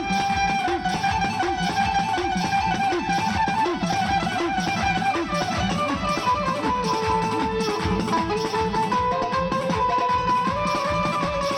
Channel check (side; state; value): both; identical; correlation 1.00